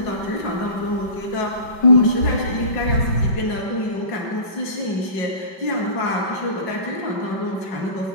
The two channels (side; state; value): right; late; 5.2 ms